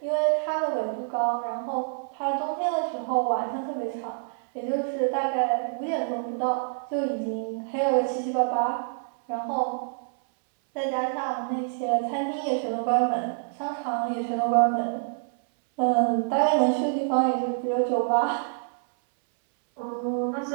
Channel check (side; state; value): left; silent; 60 dB below the other